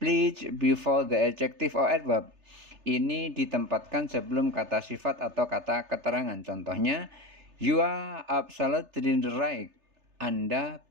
before the adjective or adverb. Ini ditempatkan sebelum kata sifat atau kata keterangan. Contohnya, you are absolutely right. Anda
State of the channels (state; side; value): late; left; 3.3 ms